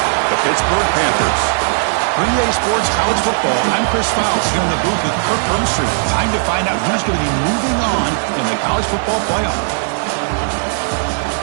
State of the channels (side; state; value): left; silent; 58 dB below the other